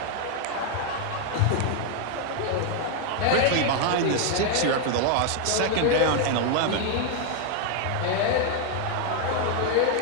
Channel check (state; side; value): different; both; correlation 0.00